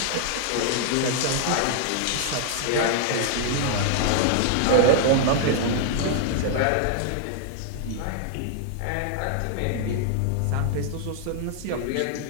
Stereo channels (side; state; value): both; different; correlation 0.00